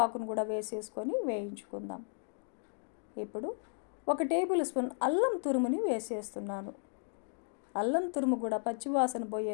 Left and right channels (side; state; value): right; silent; digital silence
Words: కూడా వేసేసుకొని వేయించుకుందాం. ఇప్పుడు 1 టేబుల్ స్పూన్ అల్లం తురుముని వేసేస్తున్నాను. అల్లం తురుము కూడా పచ్చివాసన